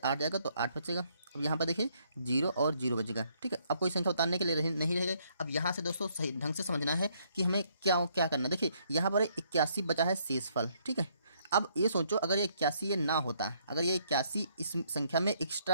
जाएगा तो 8 बचेगा। अब यहाँ पर देखिए 0 और 0 बचेगा। ठीक है, अब कोई संख्या उतारने के लिए नहीं रहेगा। अब यहाँ से दोस्तों सही ढंग से समझना है कि हमें क्या क्या करना है। देखिए यहाँ पर 81 बचा है शेषफल। ठीक है, अब ये सोचो अगर ये 81 ये ना होता, अगर ये 81 इस संख्या में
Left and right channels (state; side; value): inverted; both; correlation -0.69